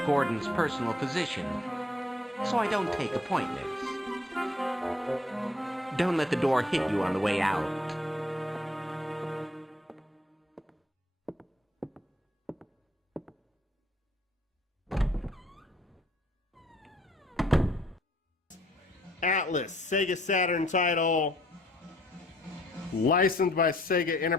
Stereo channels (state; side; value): normal; both; correlation 0.64